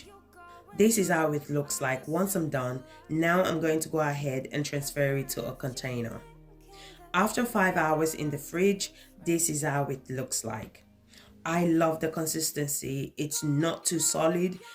This is how it looks like once I'm done. Now I'm going to go ahead and transfer it to a container. After 5 hours in the fridge, this is how it looks like. I love the consistency. It's not too solid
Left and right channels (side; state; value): both; identical; correlation 1.00